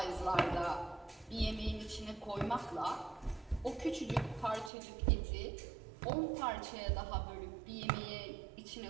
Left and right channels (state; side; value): drops out; left; at 4.7 s